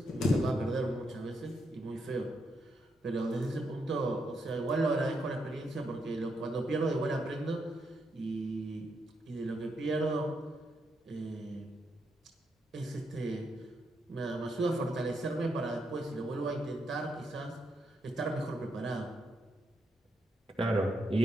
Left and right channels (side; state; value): both; normal; correlation 0.80